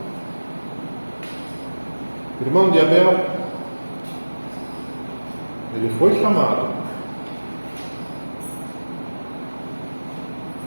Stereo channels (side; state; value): both; inverted; correlation -1.00